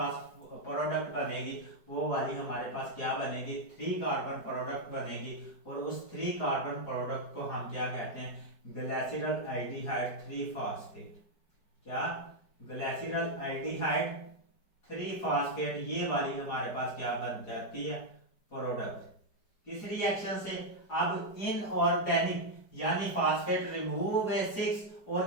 प्रोडक्ट बनेगी वो वाली हमारे पास क्या बनेगी, 3 कार्बन प्रोडक्ट बनेगी, और उस 3 कार्बन प्रोडक्ट को हम क्या कहते हैं, ग्लिसरल एल्डिहाइड 3 फास्फेट। क्या, ग्लिसरल एल्डिहाइड 3 फास्फेट, ये वाली हमारे पास क्या बन जाती है, प्रोडक्ट। किस रिएक्शन से, अब इनऑर्गेनिक यानी फास्फेट रिमूव हुए 6,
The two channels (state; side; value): late; right; 4.9 ms